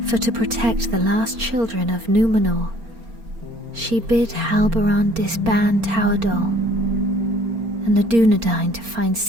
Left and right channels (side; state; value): left; late; 4.3 ms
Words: For to protect the last children of Númenor, she bid Halbarand disband Tauerdal and the Dunedain to find